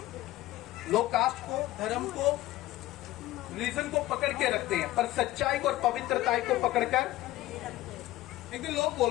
लोग कास्ट को, धर्म को, रीजन को पकड़ के रखते हैं, पर सच्चाई को और पवित्रता को पकड़कर। एक दिन लोग बोल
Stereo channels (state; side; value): quieter; right; 16.4 dB